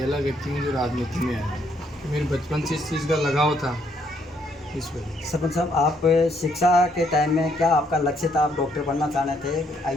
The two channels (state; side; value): normal; both; correlation 0.71